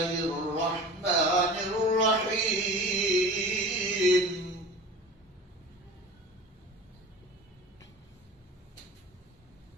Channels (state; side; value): normal; both; correlation 0.38